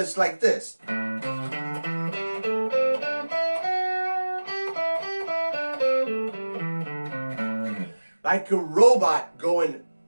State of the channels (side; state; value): both; inverted; correlation -1.00